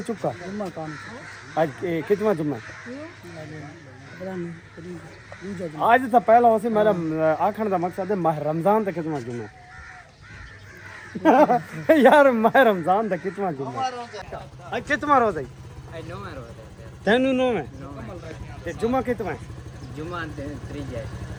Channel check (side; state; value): both; identical; correlation 1.00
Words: चुका। जुम्मा कौन? आज कितना जुम्मा? आज तो पहला वैसे मेरा आखण दा मकसद है माह रमजान दा कितना जुम्मा यार माह रमजान दा कितना जुम्मा? आज कितना रोजा है? तेनू नो है ते जुम्मा कितना है? जुम्मा त्रीज है।